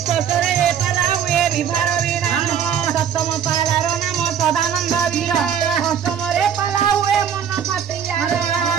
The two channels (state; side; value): quieter; left; 8.2 dB